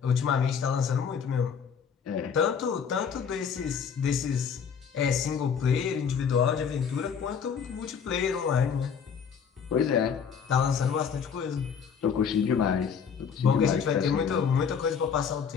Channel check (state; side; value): quieter; right; 6.8 dB